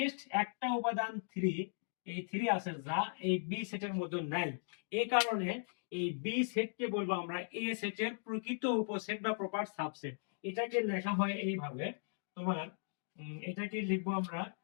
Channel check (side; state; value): right; silent; digital silence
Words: একটা উপাদান 3, এই 3 আছে যা এই বি সেটের মধ্যে নাই। এই কারণে এই বি সেটকে বলবো আমরা এ সেটের প্রকৃত উপসেট বা প্রপার সাবসেট। এটাকে লেখা হয় এইভাবে তোমার, এটাকে লিখবো আমরা